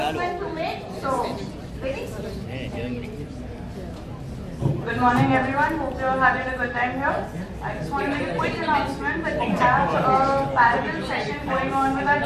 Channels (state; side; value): identical; both; correlation 1.00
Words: to make. So, ready? Good morning, everyone. Hope you're having a good time here. I just want to make a quick announcement that we have a parallel session going on with our